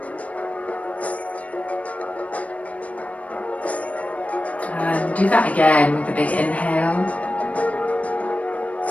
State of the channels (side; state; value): right; late; 0.067 ms